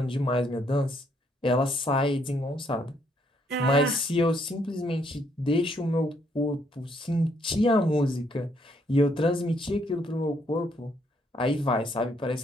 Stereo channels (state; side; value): normal; both; correlation 0.71